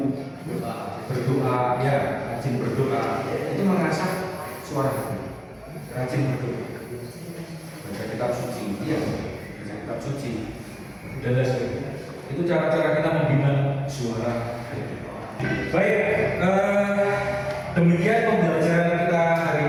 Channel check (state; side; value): identical; both; correlation 1.00